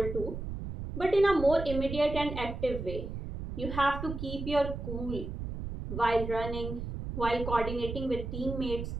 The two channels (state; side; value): noise; right; rumble, 6 dB below the sound